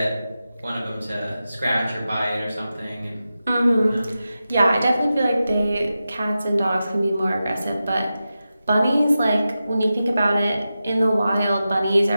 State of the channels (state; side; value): inverted; both; correlation -0.92